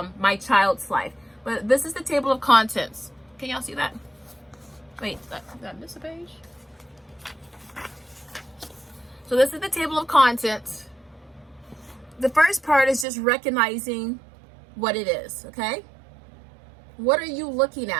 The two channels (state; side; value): drops out; left; at 13.1 s